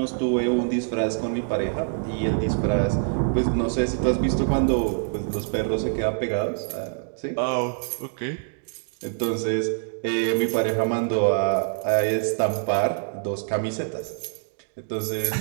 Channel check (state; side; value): silent; left; digital silence